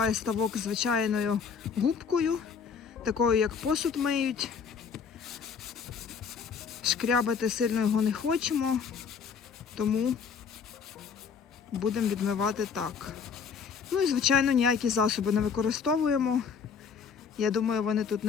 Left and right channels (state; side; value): quieter; right; 6.3 dB